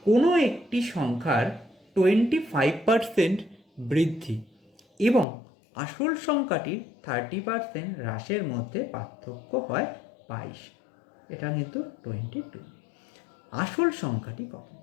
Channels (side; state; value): right; drops out; at 5.2 s